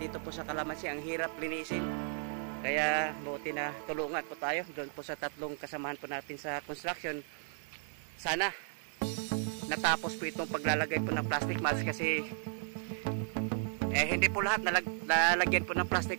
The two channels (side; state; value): left; silent; 55 dB below the other